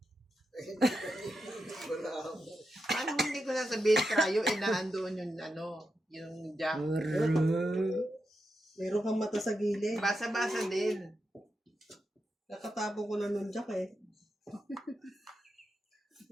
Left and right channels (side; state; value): both; normal; correlation 0.86